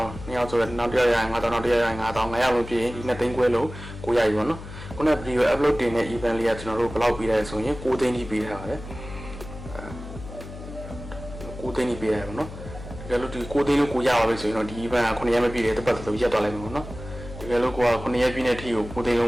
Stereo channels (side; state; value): left; noise; hum, 13 dB below the sound